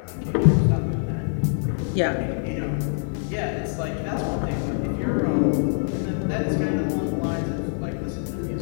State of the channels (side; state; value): right; silent; 62 dB below the other